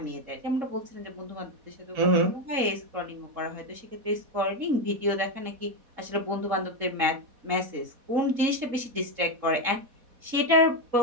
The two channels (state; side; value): late; left; 4.1 ms